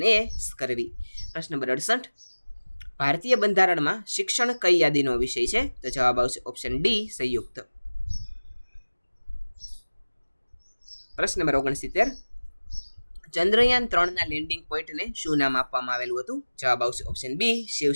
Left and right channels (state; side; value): inverted; both; correlation -1.00